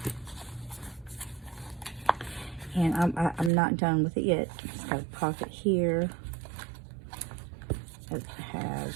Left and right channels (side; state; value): left; drops out; at 3.5 s